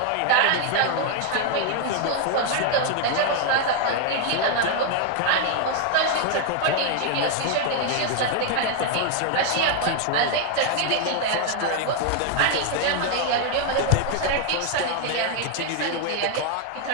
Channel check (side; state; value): both; different; correlation 0.00